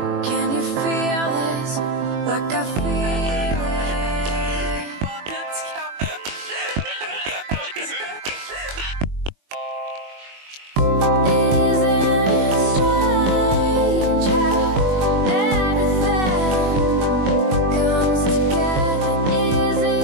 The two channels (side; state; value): left; late; 21 ms